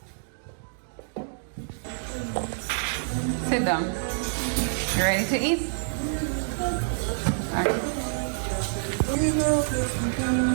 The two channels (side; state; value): left; silent; digital silence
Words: Sit down. You ready to eat? Okay.